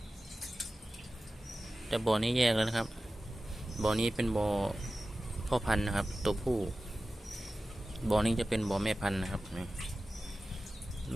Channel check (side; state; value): both; normal; correlation 0.95